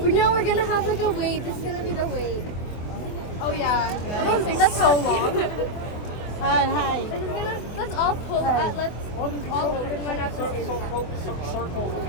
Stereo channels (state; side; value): late; right; 24 ms